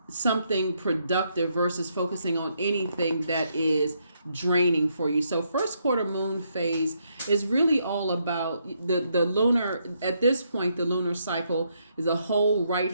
something productive versus focusing on anything that is draining for you. So first quarter moon phase is really all about the lunar, at this point, the lunar cycle is the whole right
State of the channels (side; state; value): both; inverted; correlation -0.76